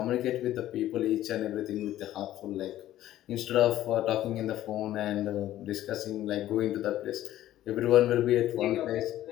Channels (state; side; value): quieter; right; 13.5 dB